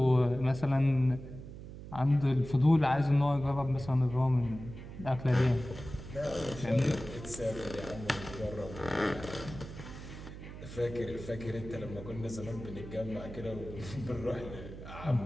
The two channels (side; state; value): right; noise; hum, 12 dB below the sound